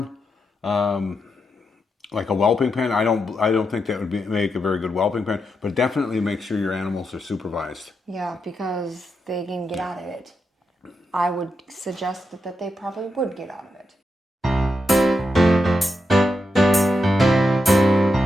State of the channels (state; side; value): normal; both; correlation 0.85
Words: like a whelping pen. I don't think that would make a very good whelping pen. But definitely make sure your animals are supervised. Yeah, because they can get out of it. I would suggest that they probably would get out of it.